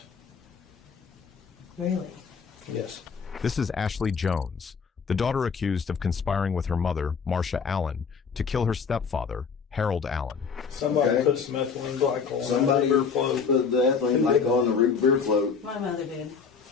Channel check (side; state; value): right; quieter; 5.8 dB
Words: Really? Yes. This is Ashley Jones, the daughter accused of conspiring with her mother, Marsha Allen, to kill her stepfather, Harold Allen. Somebody put some ethylene glycol Somebody on the beer float. put the ethylene glycol on the root beer float. My mother did.